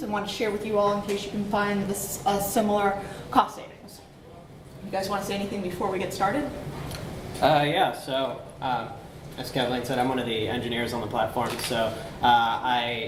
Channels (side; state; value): both; identical; correlation 1.00